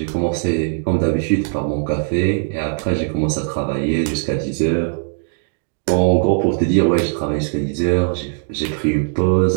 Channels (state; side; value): silent; left; digital silence